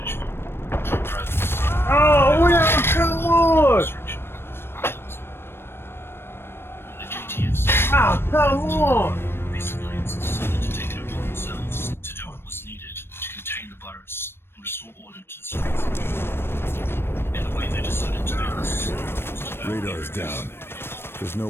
men, truck drivers. Oh, well, come on! Construction. The JTF said Oh, come on! these civilians decided to take it upon themselves to do what was needed to contain the virus and restore order to the streets. And the way they decided to do this was to Radar's down. There's no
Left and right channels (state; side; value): late; right; 0.11 ms